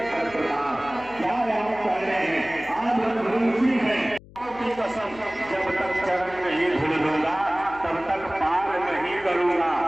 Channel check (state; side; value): noise; left; hum, 21 dB below the sound